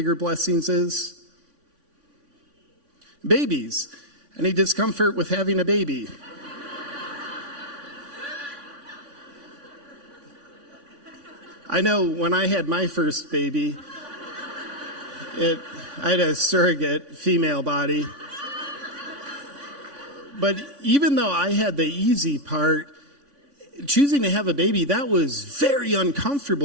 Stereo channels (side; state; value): left; late; 3.5 ms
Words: blessings is? Babies. Any discomfort with having a baby? I know when I had my first baby, I had a surrogate female body. But even though I had the easy part, choosing to have a baby, that was very